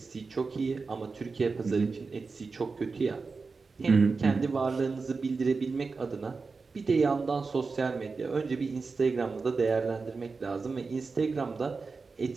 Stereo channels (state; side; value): quieter; left; 4.4 dB